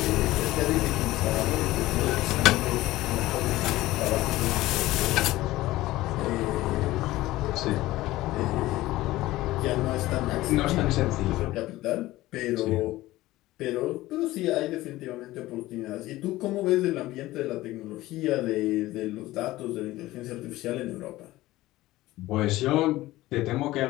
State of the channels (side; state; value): right; quieter; 17.3 dB